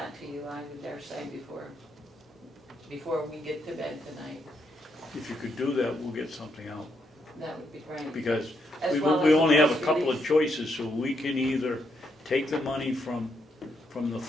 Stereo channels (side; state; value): both; normal; correlation 0.78